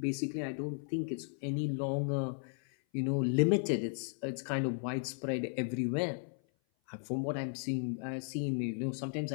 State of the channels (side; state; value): right; silent; 54 dB below the other